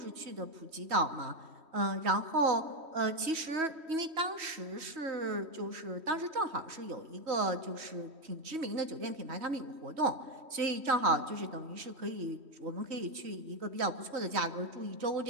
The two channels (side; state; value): left; late; 3.1 ms